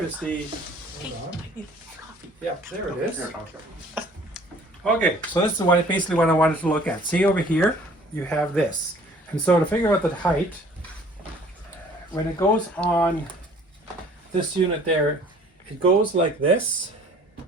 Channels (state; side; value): normal; both; correlation 0.53